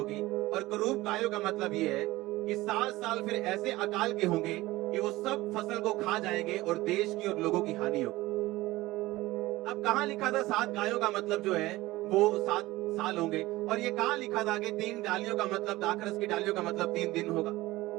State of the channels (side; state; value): left; quieter; 18.6 dB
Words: और कुरूप गायों का मतलब ये है कि 7 साल फिर ऐसे अकाल के होंगे कि वो सब फसल को खा जाएंगे और देश की और लोगों की हानि होगी। अब कहां लिखा था 7 गायों का मतलब जो है वो 7 साल होंगे, और ये कहां लिखा था कि 3 डालियों का मतलब, दाखरस की डालियों का मतलब 3 दिन होगा?